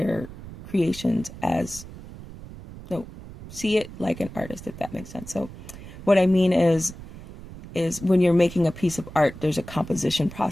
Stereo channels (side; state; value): right; noise; rumble, 15 dB below the sound